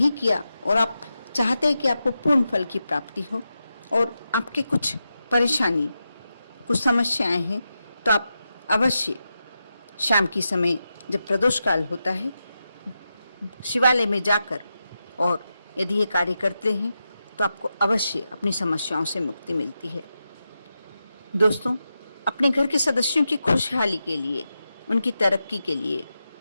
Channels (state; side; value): inverted; both; correlation -0.89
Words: किया और आप चाहते हैं कि आपको पूर्ण फल की प्राप्ति हो और आपके कुछ परेशानी, कुछ समस्याएं हैं, तो आप अवश्य शाम की समय जब प्रदोष काल होता है शिवालय में जाकर और यदि ये कार्य करते हैं तो आपको अवश्य अपनी समस्याओं से मुक्ति मिलती है। दोस्तों, अपने घर के सदस्यों की खुशहाली के लिए, उनकी तरक्की के लिए